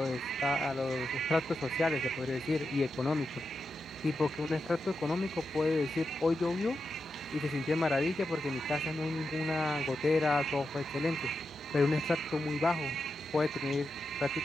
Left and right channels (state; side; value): normal; both; correlation 0.88